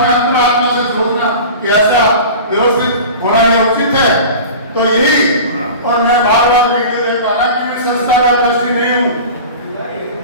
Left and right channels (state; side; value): inverted; both; correlation -0.36